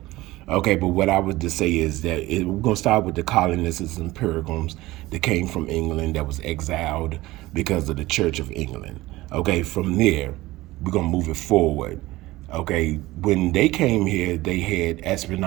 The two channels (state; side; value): quieter; left; 18.5 dB